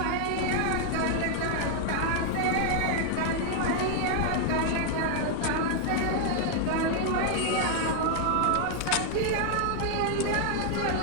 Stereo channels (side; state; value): both; different; correlation 0.00